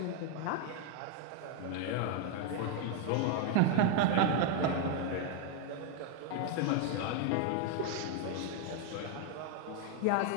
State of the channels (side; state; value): both; different; correlation 0.00